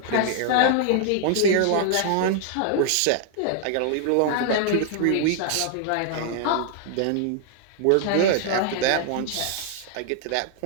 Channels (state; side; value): different; both; correlation 0.00